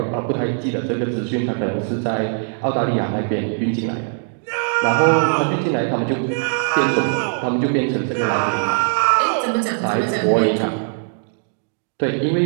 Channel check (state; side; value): silent; left; digital silence